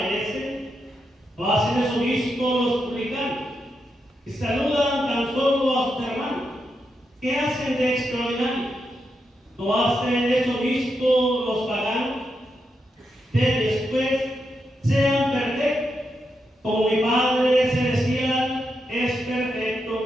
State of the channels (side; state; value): both; normal; correlation 0.84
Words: ¿O hacen eso mismo los publicanos, que saludan tan solo a sus hermanos? ¿Qué hacen de extraordinario? ¿No hacen eso mismo los paganos? Ustedes pues sean perfectos, como mi Padre Celestial es perfecto.